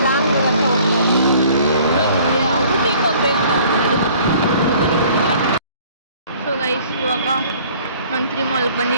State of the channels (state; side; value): inverted; both; correlation -0.54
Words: ಲಾಂಗ್ ಔಟಿಂಗ್ ಹೋಗ್ಬೇಕು ನಾವು. ಸೊ ಗೈಸ್, ಇವಾಗ ಮಂತ್ರಿ ಮಾಲ್ಗೆ